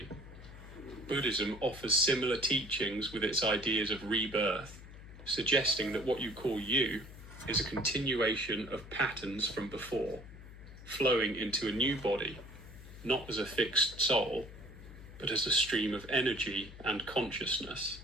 Buddhism offers similar teachings with its ideas of rebirth, suggesting that what you call you is a continuation of patterns from before, flowing into a new body, not as a fixed soul, but as a stream of energy and consciousness.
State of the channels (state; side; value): noise; left; hum, 16 dB below the sound